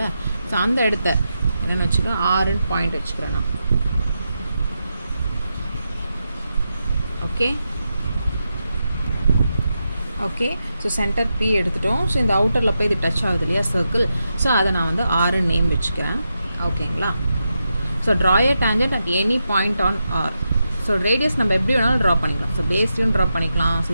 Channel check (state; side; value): inverted; both; correlation -0.87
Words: ஸோ அந்த இடத்த என்னென்னு வச்சுக்கிறேன், ஆர்ன்னு பாயிண்ட் வச்சுக்கிறேன் நான். Okay okay so center B எடுத்துட்டோம். ஸோ இந்த அவுட்டரில் போய் இது டச் ஆகுது இல்லையா சர்க்கிள், ஸோ அதை நான் வந்து ஆர் நேம் வச்சுக்கிறேன். ஓகேங்களா? So draw a tangent at any point on R. So radius நம்ம எப்படி வேணாலும் ட்ரா பண்ணிக்கலாம். ஸோ பேஸ்லையும் ட்ரா பண்ணிக்கலாம், ஸோ